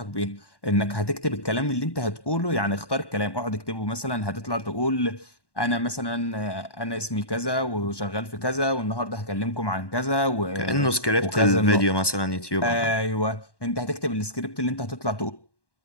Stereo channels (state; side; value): late; right; 1.1 ms